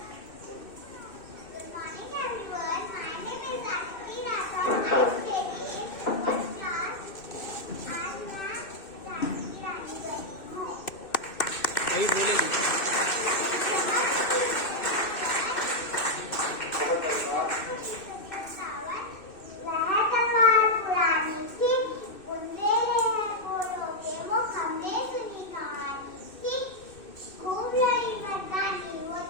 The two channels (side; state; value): right; late; 2.6 ms